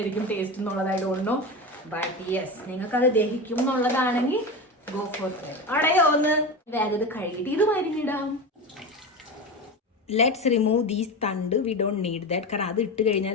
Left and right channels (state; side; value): normal; both; correlation 0.23